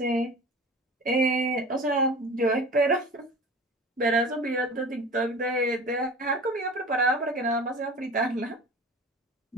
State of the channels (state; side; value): normal; both; correlation 0.38